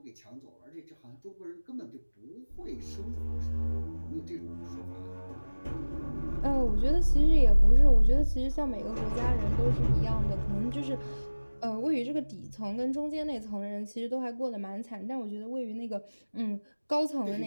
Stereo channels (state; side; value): inverted; both; correlation -1.00